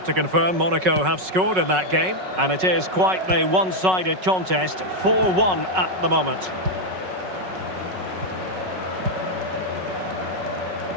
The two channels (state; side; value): late; left; 5.4 ms